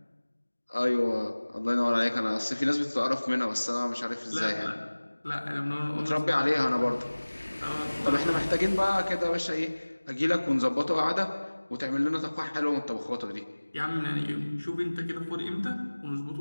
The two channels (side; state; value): both; inverted; correlation -1.00